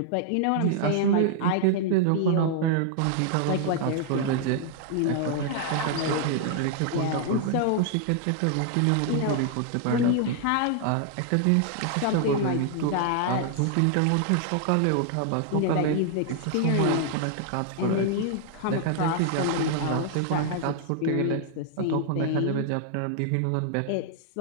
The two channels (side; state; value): both; different; correlation -0.01